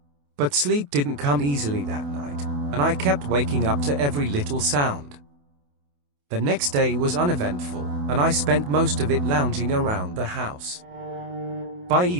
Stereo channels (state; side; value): late; left; 28 ms